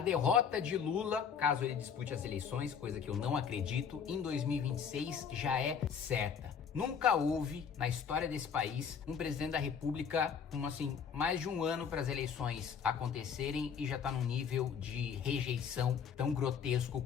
derrota de Lula, caso ele dispute as eleições, coisa que eu não acredito, em 2026 já é certa. Nunca houve, na história desse país, um presidente da República com, mais de um ano para as eleições acontecerem e já tá num nível de rejeição tão grotesco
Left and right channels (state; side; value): quieter; right; 7.0 dB